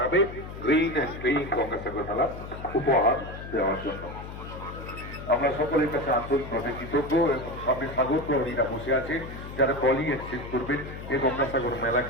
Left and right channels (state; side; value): noise; left; hum, 11 dB below the sound